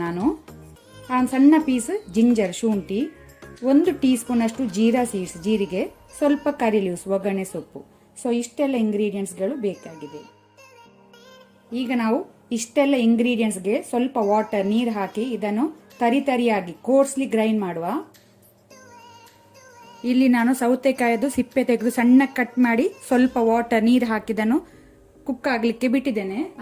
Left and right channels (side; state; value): both; identical; correlation 1.00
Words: ನಾನು. ಸಣ್ಣ ಪೀಸ್ ಜಿಂಜರ್ ಶುಂಠಿ, 1 ಟೀ ಸ್ಪೂನ್ ಅಷ್ಟು ಜೀರಾ ಸೀಡ್ಸ್ ಜೀರಿಗೆ, ಸ್ವಲ್ಪ ಕರಿ ಲೀವ್ಸ್ ಒಗ್ಗರಣೆ ಸೊಪ್ಪು. ಸೊ ಇಷ್ಟೆಲ್ಲ ಇಂಗ್ರೀಡಿಯೆಂಟ್ಸ್ಗಳು ಬೇಕಾಗಿದೆ. ಈಗ ನಾವು ಇಷ್ಟೆಲ್ಲ ಇಂಗ್ರೀಡಿಯೆಂಟ್ಸ್ಗೆ ಸ್ವಲ್ಪ ವಾಟರ್ ನೀರು ಹಾಕಿ ಇದನ್ನು ತರಿಯಾಗಿ ಕೋರ್ಸ್ಲಿ ಗ್ರೈಂಡ್ ಮಾಡುವ. ಇಲ್ಲಿ ನಾನು ಸೌತೆಕಾಯದು ಸಿಪ್ಪೆ ತೆಗೆದು ಸಣ್ಣ ಕಟ್ ಮಾಡಿ ಸ್ವಲ್ಪ ವಾಟರ್ ನೀರು ಹಾಕಿದನ್ನು ಕುಕ್ ಆಗ್ಲಿಕ್ಕೆ ಬಿಟ್ಟಿದ್ದೇನೆ.